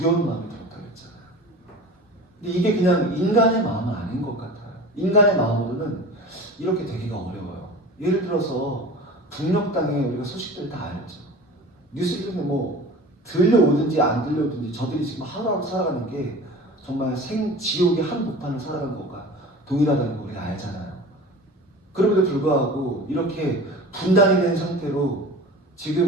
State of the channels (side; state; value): both; normal; correlation 0.37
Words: 마음이 들었다고 했잖아요. 근데 이게 그냥 인간의 마음은 아닌 것 같아요. 인간의 마음으로는 이렇게 되기가 어려워요. 예를 들어서 북녘 땅에 우리가 소식들 다 알죠. 뉴스를 뭐 들려오든지 안 들려오든지 저들이 지금 하루하루 살아가는 게 정말 지옥의 한복판을 살아가는 것과 동일하다는 걸 우리가 알잖아요. 그럼에도 불구하고 이렇게 분단이 된 상태로